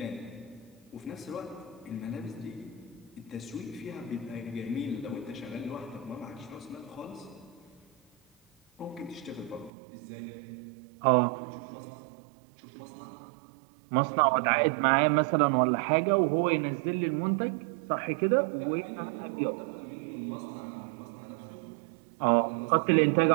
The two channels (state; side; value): drops out; left; at 9.7 s